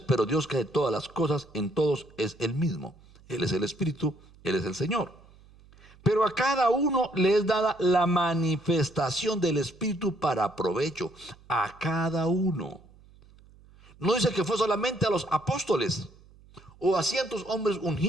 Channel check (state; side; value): noise; right; hum, 25 dB below the sound